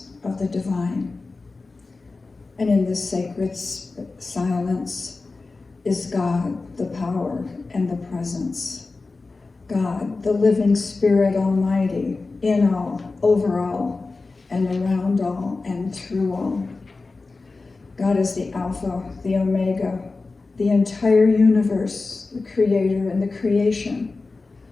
of the divine. And in this sacred silence is God, the power and the presence. God, the living Spirit Almighty, in all, over all, and around all, and through all. God is the Alpha, the Omega, the entire universe, the Creator and the creation,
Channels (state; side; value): quieter; right; 3.7 dB